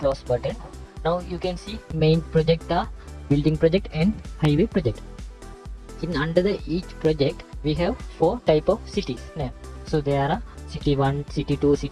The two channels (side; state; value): both; identical; correlation 1.00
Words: button. Now you can see main project are building project and highway project. In under the each project we have 4 type of cities name. So there are city 1, city 2,